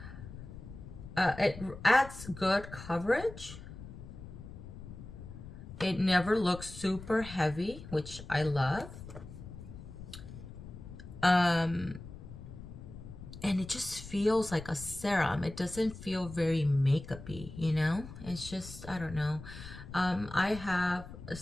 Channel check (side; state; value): left; noise; rumble, 13 dB below the sound